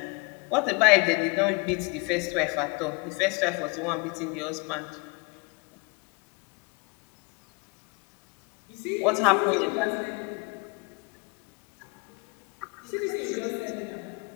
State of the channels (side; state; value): right; quieter; 29.9 dB